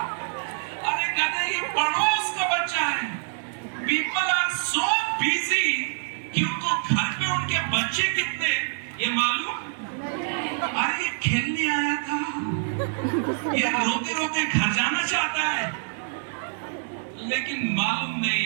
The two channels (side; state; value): left; silent; digital silence